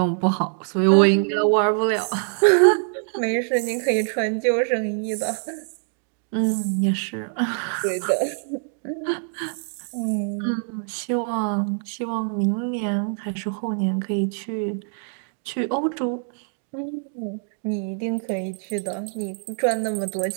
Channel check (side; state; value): left; silent; digital silence